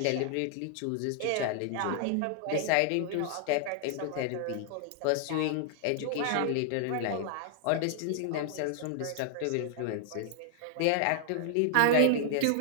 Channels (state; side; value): different; both; correlation -0.01